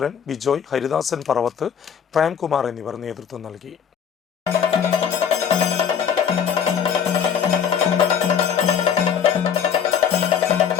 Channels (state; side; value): quieter; right; 7.8 dB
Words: ബിജോയ്, ഹരിദാസൻ പറവത്ത്, പ്രേംകുമാർ എന്നിവർ നേതൃത്വം നൽകി.